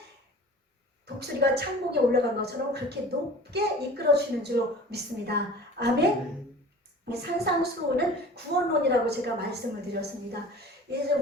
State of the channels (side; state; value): both; normal; correlation 0.41